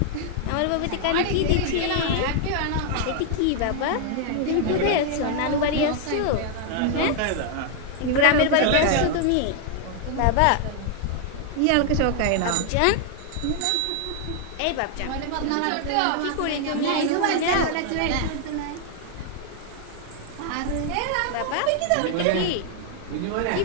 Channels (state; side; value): different; both; correlation 0.00